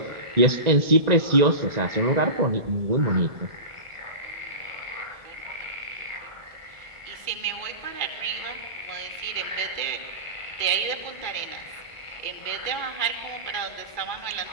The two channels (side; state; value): left; late; 2.3 ms